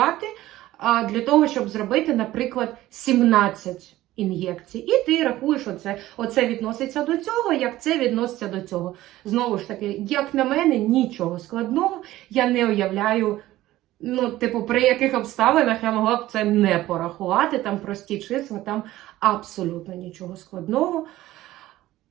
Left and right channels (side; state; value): left; quieter; 15.7 dB